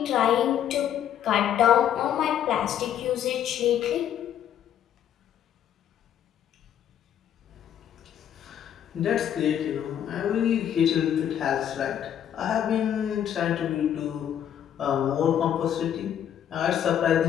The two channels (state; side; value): quieter; right; 9.9 dB